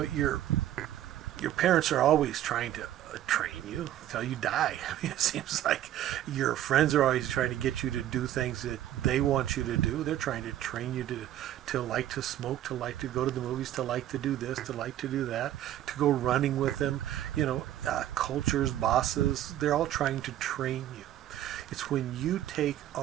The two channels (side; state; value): left; quieter; 12.4 dB